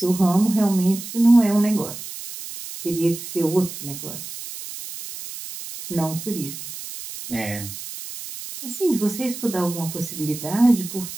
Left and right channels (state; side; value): noise; right; hiss, 11 dB below the sound